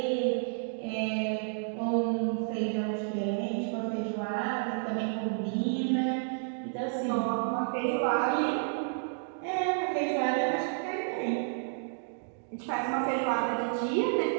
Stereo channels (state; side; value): silent; left; digital silence